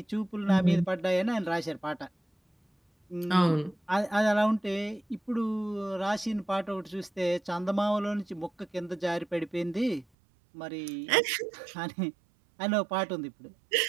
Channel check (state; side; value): drops out; left; at 10.1 s